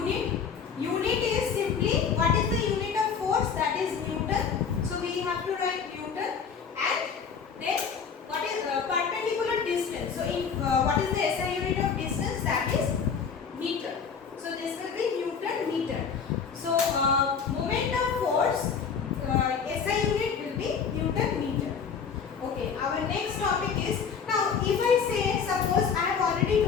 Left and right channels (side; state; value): right; quieter; 6.4 dB